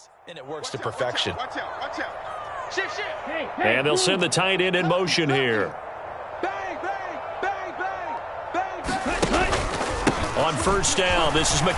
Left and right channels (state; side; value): identical; both; correlation 1.00